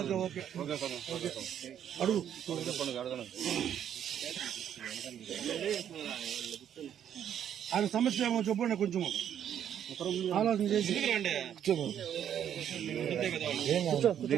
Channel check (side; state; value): left; quieter; 9.6 dB